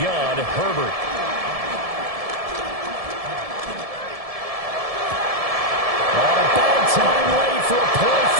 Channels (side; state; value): left; late; 1.7 ms